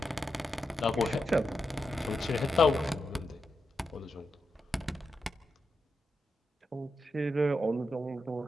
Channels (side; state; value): both; normal; correlation 0.87